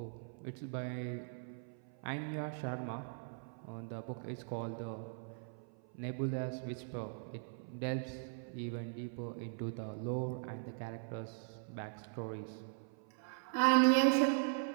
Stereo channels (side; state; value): left; silent; 51 dB below the other